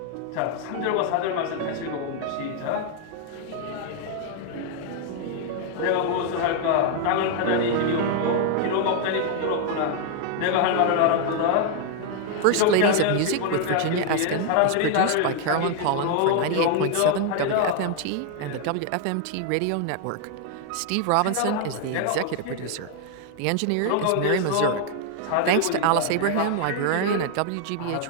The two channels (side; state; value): both; different; correlation 0.00